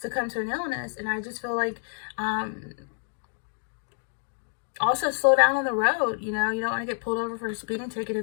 to an illness. And I just feel like also slow down on the road. You know, you don't want to get pulled over for a speeding ticket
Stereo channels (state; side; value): silent; right; 59 dB below the other